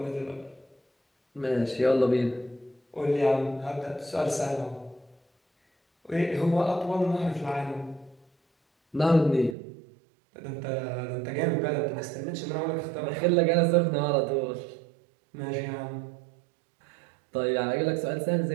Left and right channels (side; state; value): left; drops out; at 9.6 s